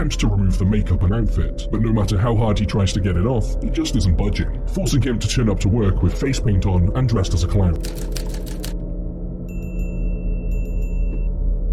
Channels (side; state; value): both; identical; correlation 1.00